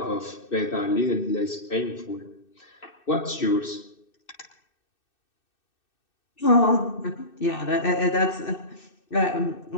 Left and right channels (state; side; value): late; right; 2.6 ms